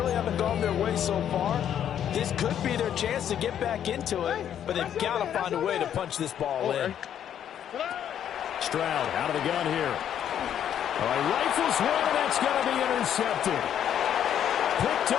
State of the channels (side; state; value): right; quieter; 9.8 dB